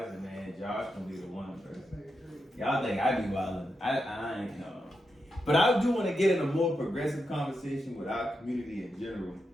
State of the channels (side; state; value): both; normal; correlation 0.86